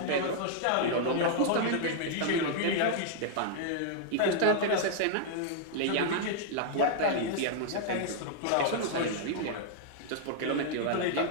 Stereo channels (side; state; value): both; different; correlation -0.01